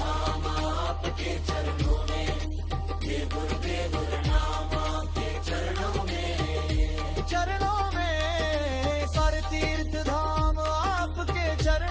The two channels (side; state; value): both; identical; correlation 1.00